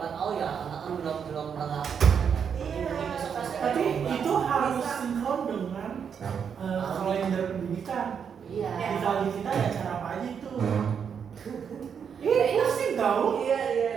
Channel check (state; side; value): quieter; left; 7.2 dB